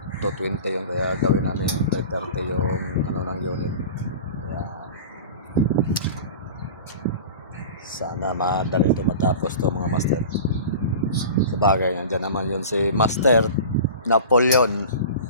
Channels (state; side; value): inverted; both; correlation -0.36